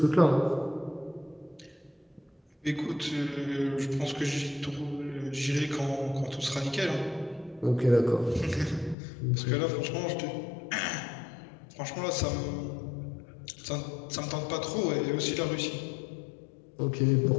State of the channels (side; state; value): right; drops out; at 9.0 s